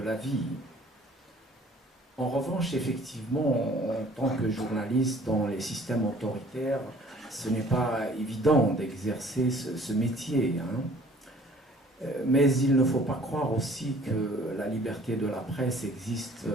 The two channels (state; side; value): normal; both; correlation 0.54